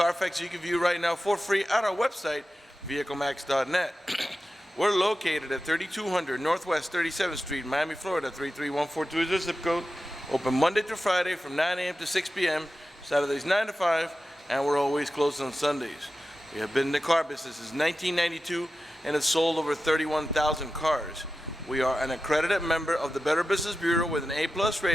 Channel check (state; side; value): normal; both; correlation 0.92